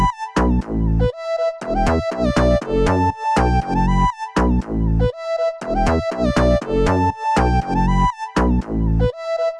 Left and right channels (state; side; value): identical; both; correlation 1.00